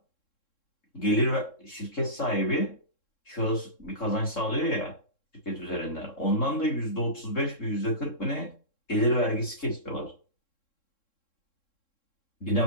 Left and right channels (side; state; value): right; late; 3.7 ms